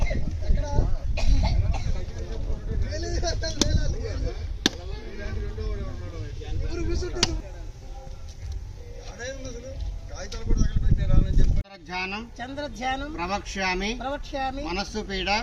చంద్రధ్యానం ప్రవక్ష్యామి మనస్సు పీడ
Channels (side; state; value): both; identical; correlation 1.00